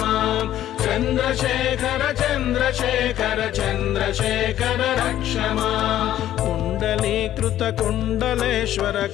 माम् चन्द्रशेखर चन्द्रशेखर चन्द्रशेखर रक्ष माम् कुण्डलीकृतकुण्डलेश्वर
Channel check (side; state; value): right; quieter; 12.4 dB